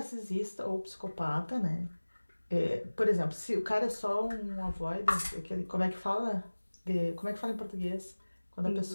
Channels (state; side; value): inverted; both; correlation -1.00